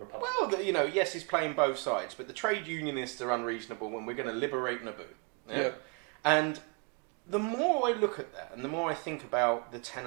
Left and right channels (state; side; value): quieter; left; 34.1 dB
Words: Well, yes, he's playing both sides, but the trade unionists are unreasonable when we're going to liberate Naboo. Yeah? And the more I look at that, and the more I think about the